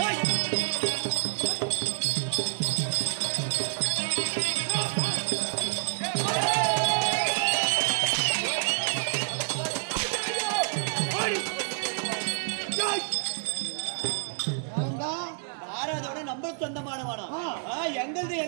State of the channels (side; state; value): left; silent; digital silence